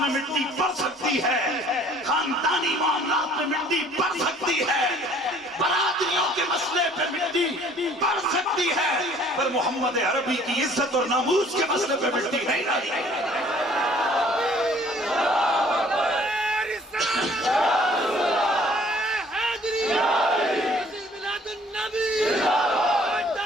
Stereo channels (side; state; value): both; normal; correlation 0.56